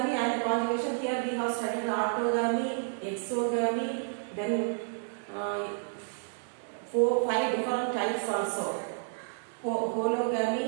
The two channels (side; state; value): left; silent; digital silence